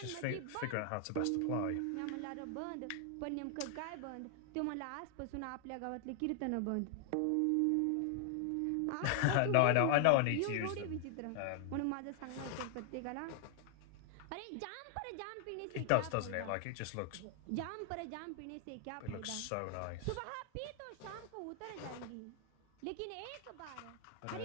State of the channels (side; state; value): both; different; correlation 0.00